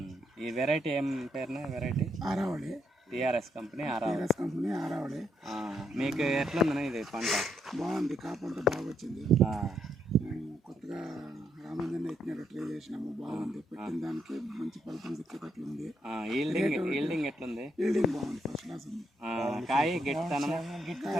ఈ వెరైటీ ఏం పేరునా? Variety Aravali, TRS company Aravali. Company Aravali. మీకు ఎట్లుందన్నా ఇది పంట? బాగుంది, కాపంట బాగా వచ్చింది. కొత్తగా రామంజన్ ఎత్తినట్టు ట్రై చేసినాము, బాగుంది. పెట్టిన దానికి మంచి ఫలితం దక్కేటట్లు ఉంది. ఈల్డింగ్ ఎట్లుంది? ఈల్డింగ్ బాగుంది, ఫస్ట్ క్లాస్ ఉంది. కాయ గట్టితనం,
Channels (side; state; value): both; normal; correlation 0.77